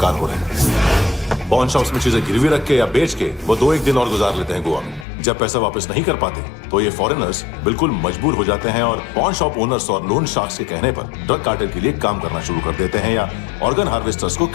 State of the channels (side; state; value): right; drops out; at 5.1 s